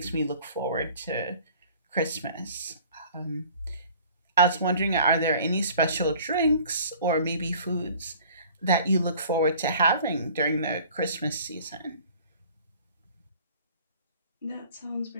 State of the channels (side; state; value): both; inverted; correlation -0.50